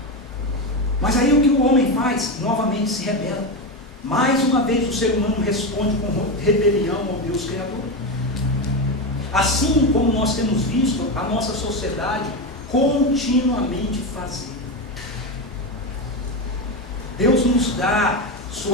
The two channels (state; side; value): normal; both; correlation 0.15